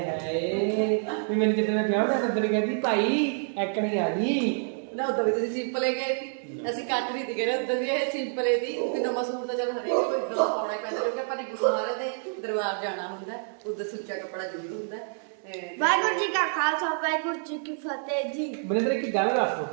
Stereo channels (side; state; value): left; silent; digital silence